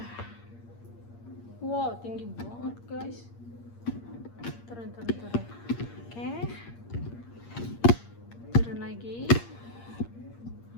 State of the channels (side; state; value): right; late; 8.6 ms